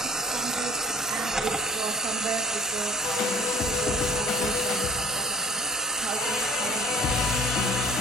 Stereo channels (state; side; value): normal; both; correlation 0.50